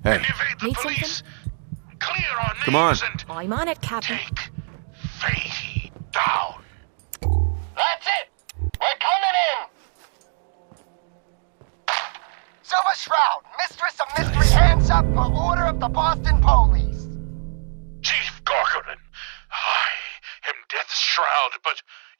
Hey. and evade the Need police. Clear our names Come on. and I'm on it, Captain. take Fatey down. That's it. We're coming in. Silver Shroud, Mistress of Mystery, hands up for order of the Boston Police. Chief Corcoran, I am Death's Shroud, but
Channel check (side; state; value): left; silent; 63 dB below the other